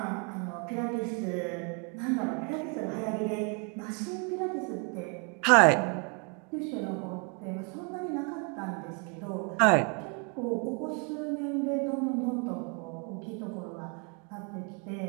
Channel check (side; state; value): left; quieter; 36.0 dB